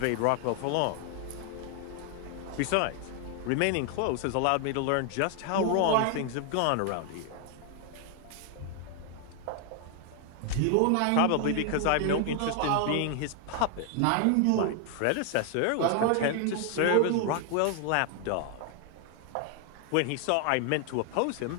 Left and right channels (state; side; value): different; both; correlation 0.00